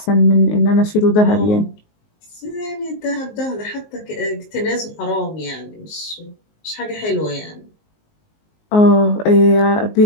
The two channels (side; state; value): right; late; 19 ms